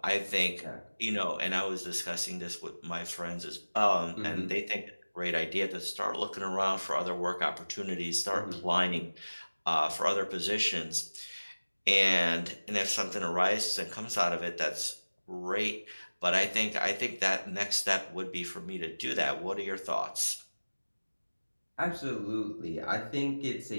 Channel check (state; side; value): inverted; both; correlation -1.00